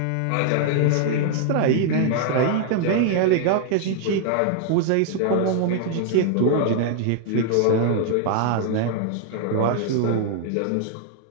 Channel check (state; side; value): different; both; correlation 0.00